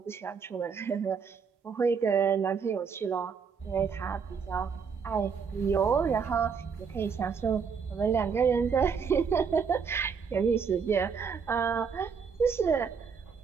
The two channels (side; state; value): left; quieter; 6.1 dB